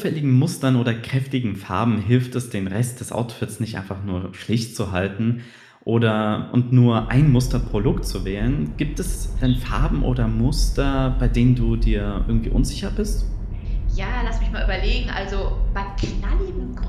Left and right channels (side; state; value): both; identical; correlation 1.00